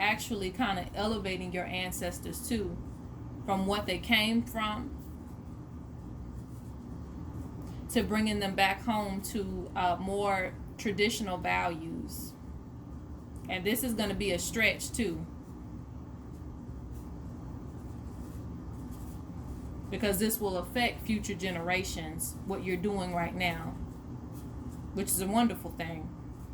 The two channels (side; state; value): both; identical; correlation 1.00